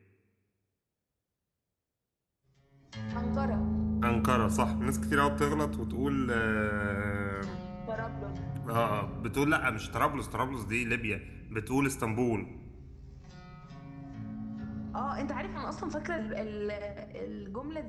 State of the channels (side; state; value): both; identical; correlation 1.00